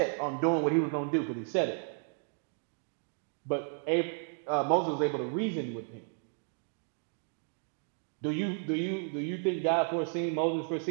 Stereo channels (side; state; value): left; silent; 56 dB below the other